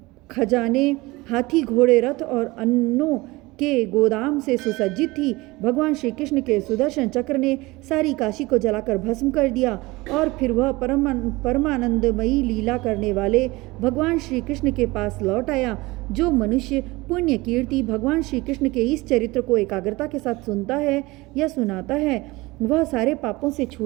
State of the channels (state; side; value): quieter; left; 21.7 dB